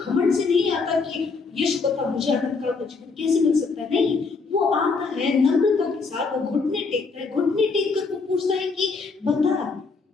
से नहीं आता कि यीशु बता मुझे अनंत काल का जीवन कैसे मिल सकता है। नहीं, वो आता है नम्रता के साथ, वो घुटने टेकता है। घुटने टेक कर वो पूछता है कि बता,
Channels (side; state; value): right; quieter; 4.5 dB